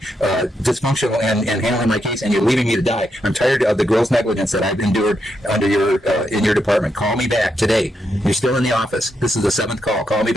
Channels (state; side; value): normal; both; correlation 0.82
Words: dysfunctional and handling my case, and you're leaving me to die. I'm tired of the gross negligence that I've endured under in your department. Call me back today. You're still in the office. This is the 7th call. Call me